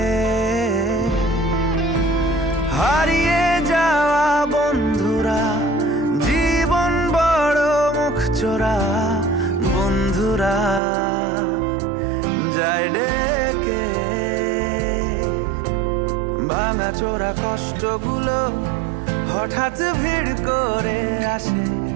হারিয়ে যাওয়া বন্ধুরা, জীবন বড় মুখ চোরা, বন্ধুরা যায় ডেকে। ভাঙাচোরা কষ্টগুলো হঠাৎ ভিড় করে আসে,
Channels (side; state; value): left; drops out; at 10.8 s